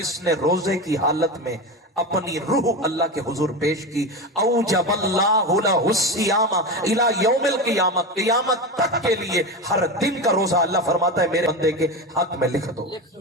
نے روزے کی حالت میں اپنی روح اللہ کے حضور پیش کی، اوجب اللہ لہ الصیام الی یوم القیامت، قیامت تک کے لیے ہر دن کا روزہ اللہ فرماتا ہے میرے بندے کے حق میں لکھ دو،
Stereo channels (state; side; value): normal; both; correlation 0.21